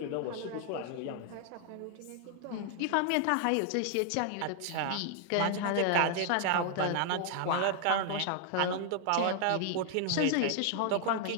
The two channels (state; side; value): different; both; correlation 0.00